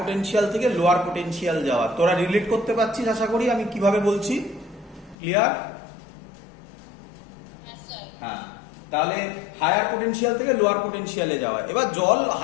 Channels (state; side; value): drops out; right; at 5.2 s